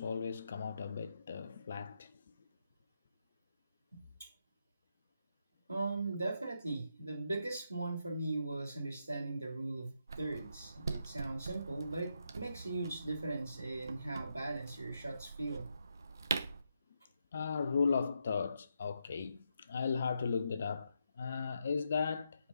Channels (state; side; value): inverted; both; correlation -0.82